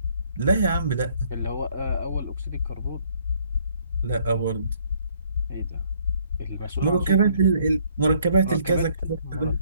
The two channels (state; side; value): inverted; both; correlation -0.65